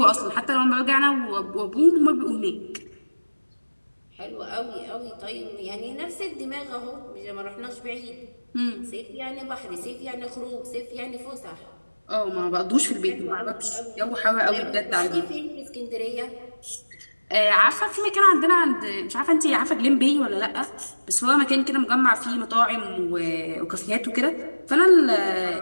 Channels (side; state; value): both; inverted; correlation -1.00